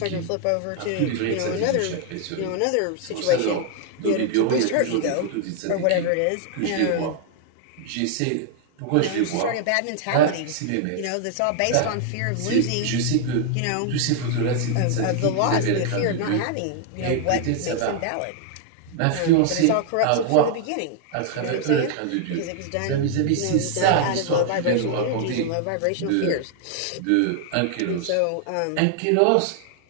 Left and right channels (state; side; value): different; both; correlation 0.00